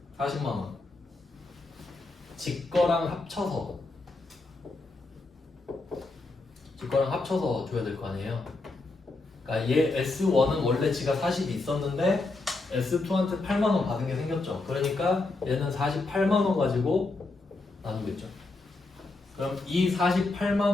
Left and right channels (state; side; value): quieter; right; 3.3 dB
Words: 40만 원. 직거랑 합쳐서 줘야 될 거 아니에요. 그러니까 얘 S1은 원래 지가 40이 있었는데 S2한테 8만 원 받은 게 생겼죠. 그러니까 얘는 48만 원 가지고 나누겠죠. 그럼 이 48만